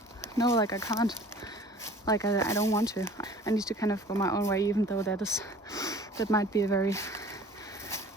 no, like I can't, like I don't want to. I need to kind of go my own way, even though that might be a very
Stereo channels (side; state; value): both; normal; correlation 0.47